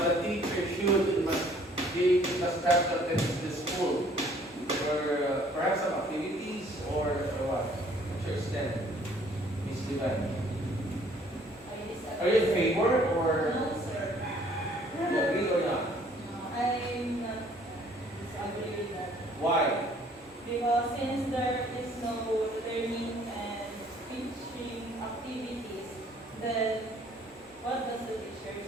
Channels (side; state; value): both; normal; correlation 0.59